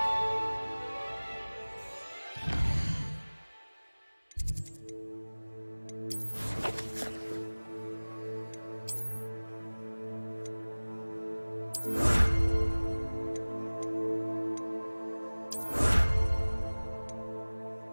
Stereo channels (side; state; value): both; inverted; correlation -1.00